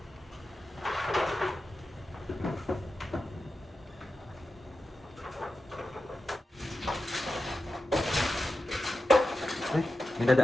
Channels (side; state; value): both; normal; correlation 0.91